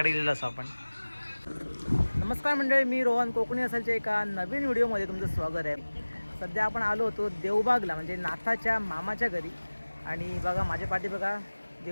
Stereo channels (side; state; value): both; inverted; correlation -1.00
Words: गेलेलो असो आपण. नमस्कार मंडळी, मी रोहन कोकणी असालच्या एका नवीन व्हिडिओमध्ये तुमचं स्वागत आहे. सध्या आपण आलो होतो देवबागला, म्हणजे नाथाच्या मामाच्या घरी. आणि बघा माझ्या पाठी बघा